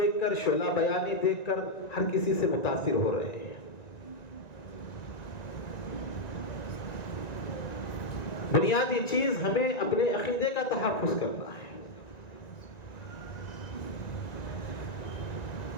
کر، شعلہ بیانی دیکھ کر ہر کسی سے متاثر ہو رہے ہیں۔ بنیادی چیز ہمیں اپنے عقیدے کا تحفظ کرنا ہے۔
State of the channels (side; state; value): right; late; 1.9 ms